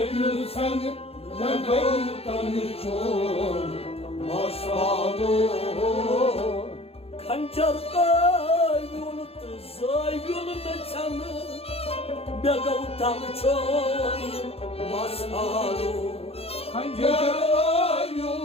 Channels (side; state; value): right; late; 0.29 ms